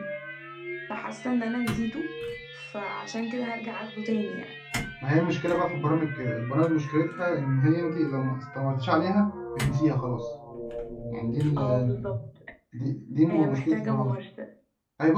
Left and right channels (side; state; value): both; identical; correlation 1.00